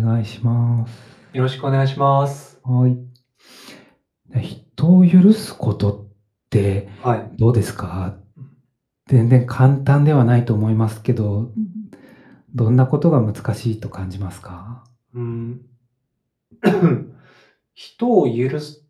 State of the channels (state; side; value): identical; both; correlation 1.00